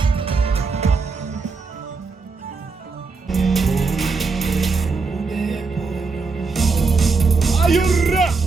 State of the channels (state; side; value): quieter; left; 4.4 dB